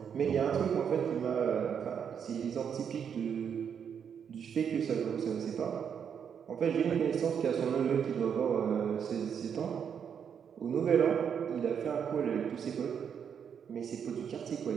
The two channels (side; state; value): left; quieter; 7.6 dB